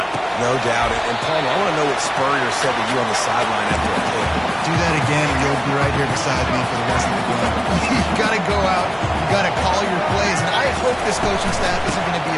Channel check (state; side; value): identical; both; correlation 1.00